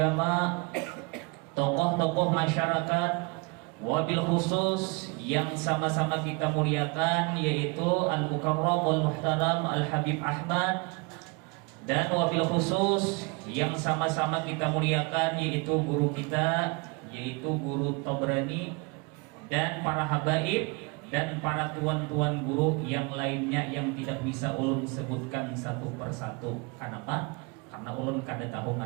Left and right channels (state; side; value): quieter; left; 29.0 dB